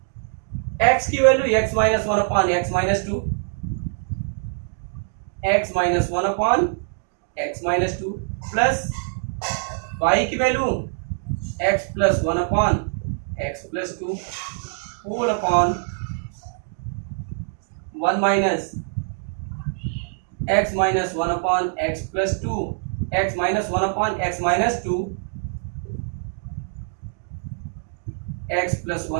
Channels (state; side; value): silent; left; digital silence